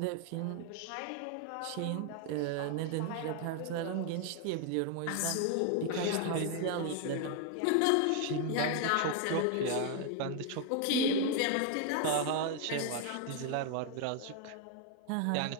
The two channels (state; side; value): different; both; correlation 0.00